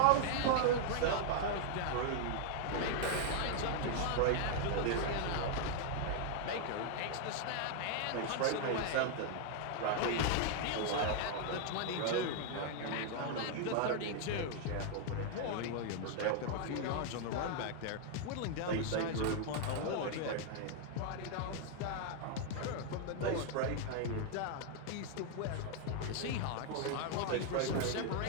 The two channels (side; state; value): both; different; correlation 0.00